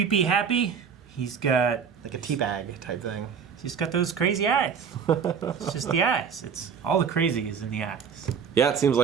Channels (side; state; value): left; quieter; 6.8 dB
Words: happy. He's got Like a teabag type thing. he's got those crazy eyes. It's just the eyes. It's all the crazy is in the eyes. Yeah, it seems